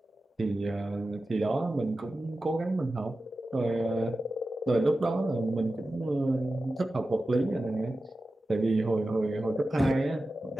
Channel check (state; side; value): normal; both; correlation 0.93